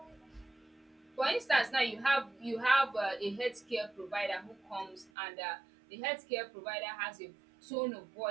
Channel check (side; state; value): left; drops out; at 5.1 s